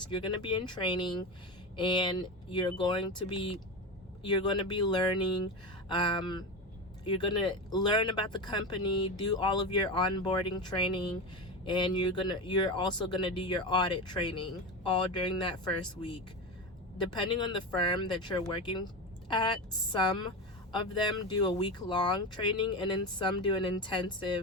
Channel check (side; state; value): both; normal; correlation 0.21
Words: you're going to be in training, and you're going to be learning. You're going to learn about the company, do all of your onboarding training, and you're also going to do your audit training all during that first week. Depending on the firm that you're working at, some of them do a week-long training, and then some do an